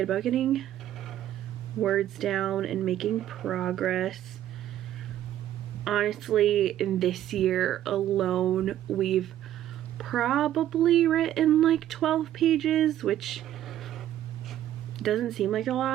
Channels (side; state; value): left; quieter; 12.2 dB